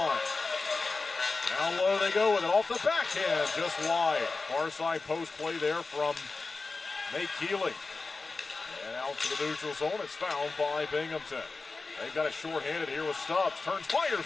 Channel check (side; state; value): right; quieter; 3.9 dB